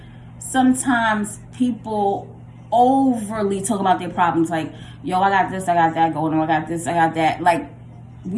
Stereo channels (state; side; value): identical; both; correlation 1.00